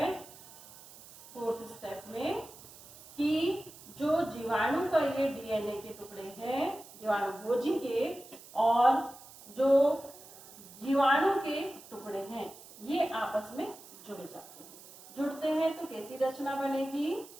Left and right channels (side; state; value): right; noise; hiss, 19 dB below the sound